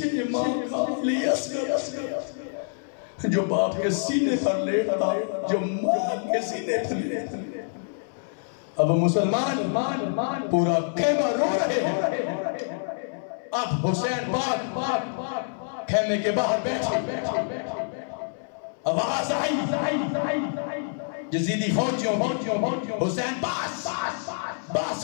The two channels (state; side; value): silent; right; 61 dB below the other